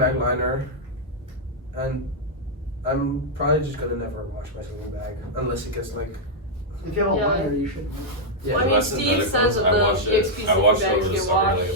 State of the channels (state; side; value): normal; both; correlation -0.05